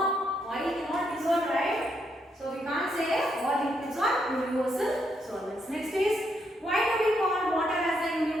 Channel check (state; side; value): normal; both; correlation 0.77